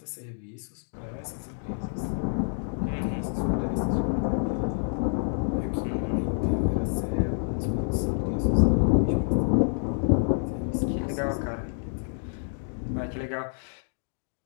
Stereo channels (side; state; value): right; silent; digital silence